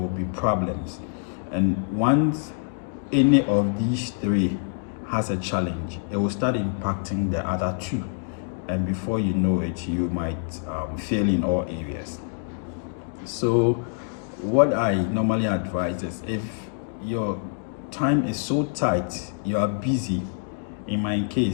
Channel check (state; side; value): silent; right; digital silence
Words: be problems. And once any of these three has a challenge, it will start impacting the other two. And before you know it, you might fail in all areas. So what I normally advise is, if your time is so tight, you are busy. In my